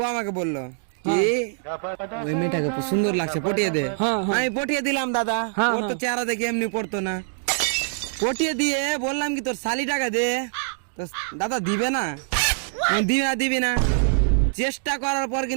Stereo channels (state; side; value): silent; left; digital silence